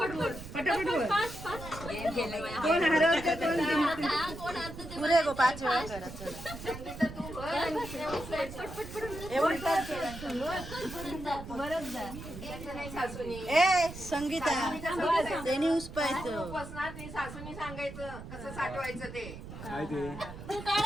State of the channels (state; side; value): noise; right; rumble, 12 dB below the sound